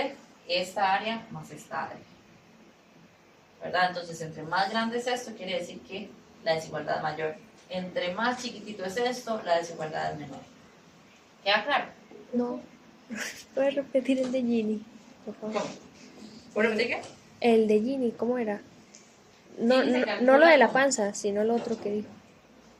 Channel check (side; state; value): both; identical; correlation 1.00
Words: esta área más esta área, ¿verdad? Entonces, entre más grande es esto, quiere decir que la desigualdad es mayor. Entre más chiquitito es esto, la desigualdad es menor. ¿Queda claro? No. ¿Puedes repetir el de Gini, por favor? ¿Cómo? ¿Puedo repetir qué? El de Gini, ¿cómo era? No, Gini se no, calcula no lo de la como panza, sino lo otro que dijo.